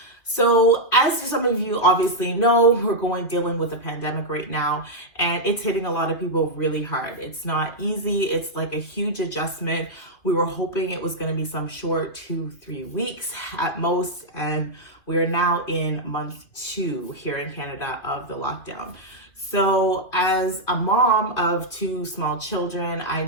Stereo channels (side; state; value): right; late; 2.5 ms